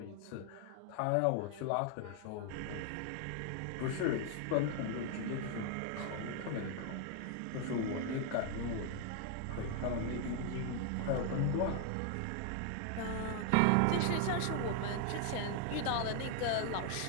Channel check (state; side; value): different; both; correlation 0.00